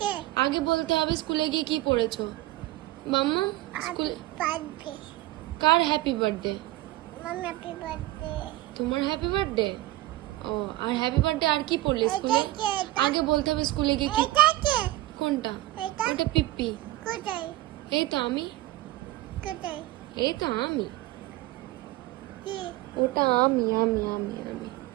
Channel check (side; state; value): left; quieter; 17.4 dB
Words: আগে বলতে হবে স্কুলে গিয়ে কি পড়েছো। মাম্মা স্কুল বার্থডে। কার happy birthday? Mamma happy birthday. তোমার হ্যাপি বার্থডে। ও আর হ্যাপি বার্থডে আর কি পড়লে স্কুলে? এটা কে? আগে বলতে হবে স্কুলে গিয়ে কি। এটা কে? কোনটা? এটা? ওটা পিপ্পি। কোথায়? এই তো আমি। কোথায়? এই তো আমি। কি? ওটা আমি আমি আমি আমি